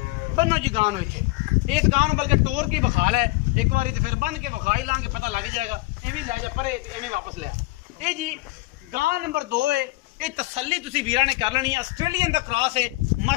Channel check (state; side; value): quieter; right; 21.8 dB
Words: बनो जी गां नूं इत्थे इस गां नूं बल्कि टोर की बखाल है एक बारी तो फिर बन के बखा ही लांगे, पता लग जाएगा। इवें लै जा परे इवें वापस लिया। ये जी गां नंबर 2 है। ये तसल्ली तुसी वीरा ने कर लेनी है। ऑस्ट्रेलियन दा क्रॉस है